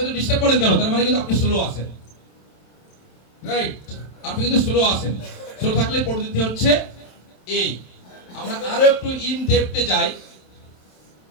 তো ডিস্টার্ব করেন কেন? তার মানে কিন্তু আপনি স্লো আছেন, রাইট? আপনি কিন্তু স্লো আছেন। স্লো থাকলে পরিস্থিতি হচ্ছে এই। আমরা আরো একটু ইন ডেপথে যাই।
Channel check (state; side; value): late; right; 27 ms